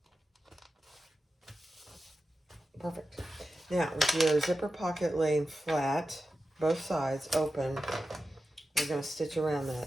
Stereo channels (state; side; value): normal; both; correlation 0.92